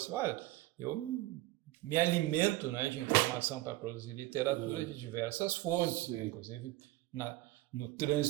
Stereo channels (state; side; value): quieter; left; 17.8 dB